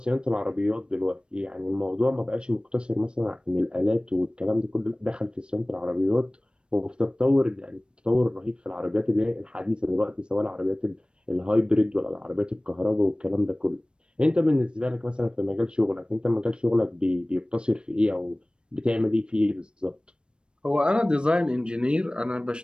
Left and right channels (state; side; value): late; left; 0.055 ms